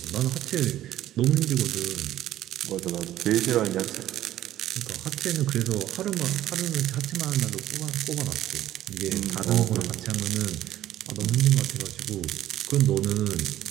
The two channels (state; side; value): quieter; left; 13.3 dB